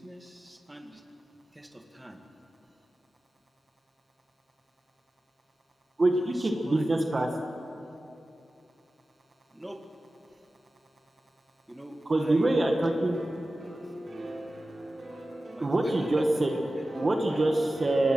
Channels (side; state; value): both; normal; correlation 0.95